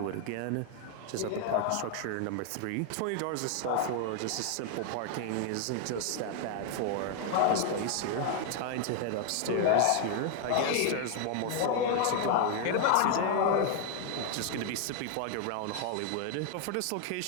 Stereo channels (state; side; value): different; both; correlation 0.00